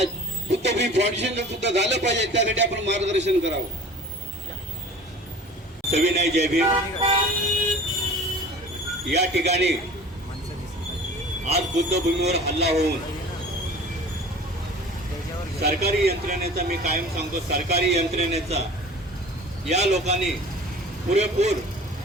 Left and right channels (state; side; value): normal; both; correlation 0.42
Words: बुद्धभूमी फाउंडेशनला सुद्धा झालं पाहिजे, त्यासाठी आपण मार्गदर्शन करावं. सविनय जय भीम. या ठिकाणी आज बुद्धभूमीवर हल्ला होऊन सरकारी यंत्रणेचा, मी कायम सांगतो सरकारी यंत्रणेचा या लोकांनी पुरेपूर